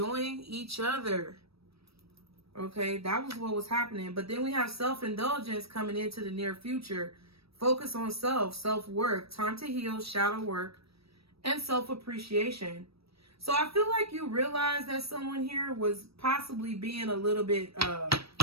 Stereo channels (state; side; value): late; left; 0.77 ms